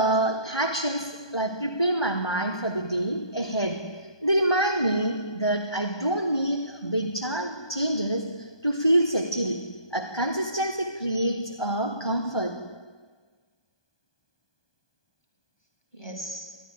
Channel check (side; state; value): right; late; 1.2 ms